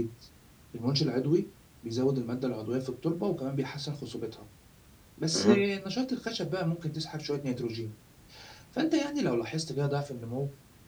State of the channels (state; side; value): identical; both; correlation 1.00